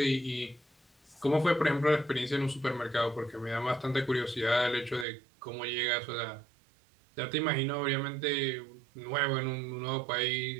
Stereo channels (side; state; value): left; drops out; at 5.1 s